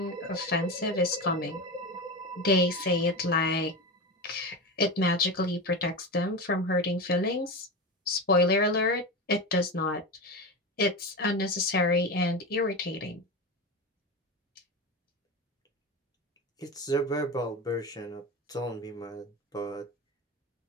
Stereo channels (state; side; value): normal; both; correlation 0.22